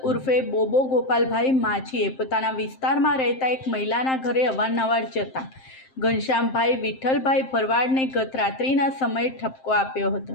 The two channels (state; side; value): late; right; 7.6 ms